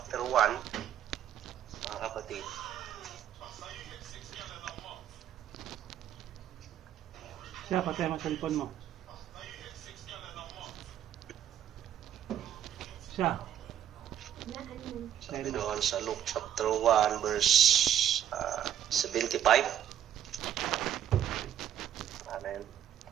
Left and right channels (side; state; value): left; quieter; 10.4 dB